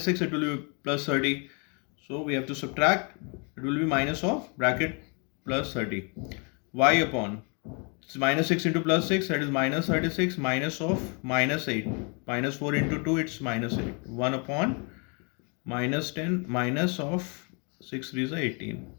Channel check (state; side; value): quieter; right; 35.0 dB